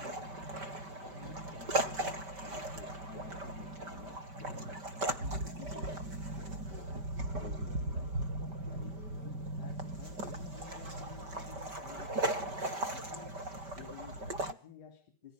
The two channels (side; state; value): left; late; 5.1 ms